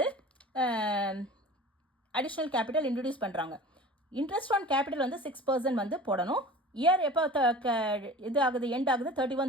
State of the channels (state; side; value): normal; both; correlation 0.39